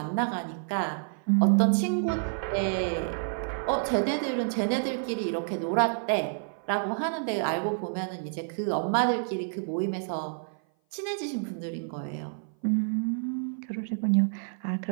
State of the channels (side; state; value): left; silent; 56 dB below the other